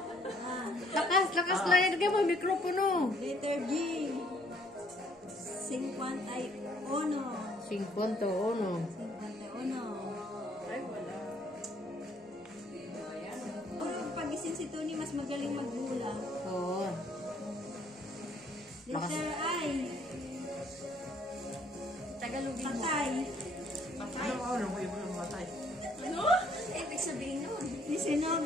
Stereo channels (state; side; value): normal; both; correlation 0.64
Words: Lakas lang yan. Lagay mo mikropono. Letter G. 51. 51. 51. Ay, wala. Puro pag-isip si Tony, mas magaling magbula. Oo. Letter I. Tagalogin mo. Patay. Ano ko yung matay? Ano? Ibig sabihin nun.